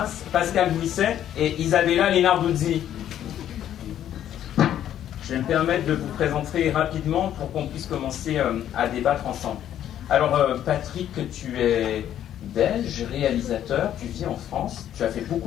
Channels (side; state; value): right; quieter; 10.9 dB